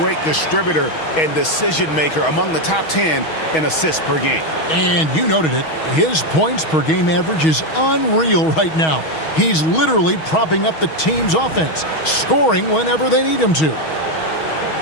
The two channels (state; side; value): late; right; 6.3 ms